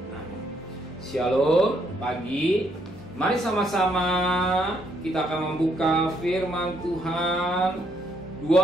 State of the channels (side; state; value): both; normal; correlation 0.72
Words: Amin. Shalom pagi. Mari sama-sama kita akan membuka firman Tuhan.